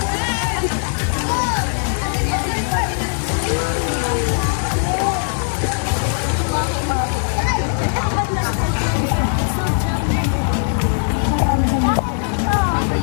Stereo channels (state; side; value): silent; right; 66 dB below the other